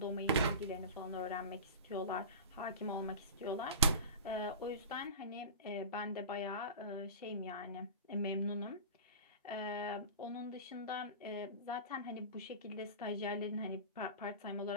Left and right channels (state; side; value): inverted; both; correlation -0.31